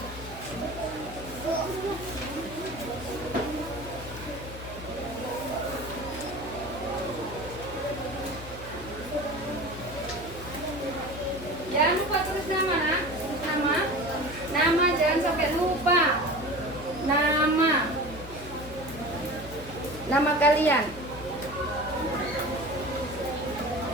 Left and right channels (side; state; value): left; noise; hum, 13 dB below the sound